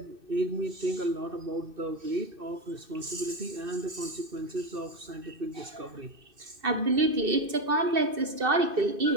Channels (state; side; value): late; left; 2.6 ms